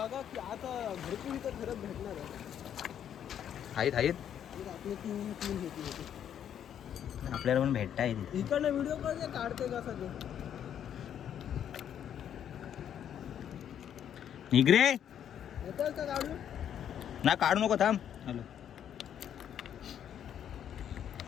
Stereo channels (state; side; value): quieter; right; 9.5 dB